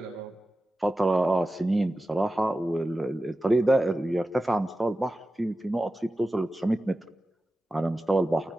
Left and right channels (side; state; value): both; normal; correlation 0.94